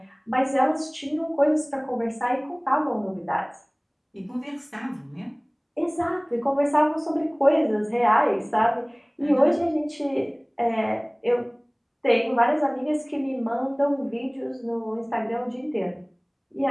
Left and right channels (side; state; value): both; identical; correlation 1.00